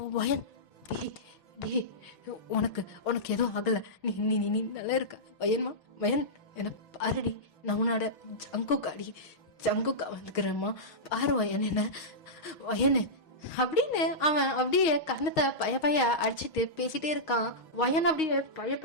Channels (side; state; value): right; late; 6.3 ms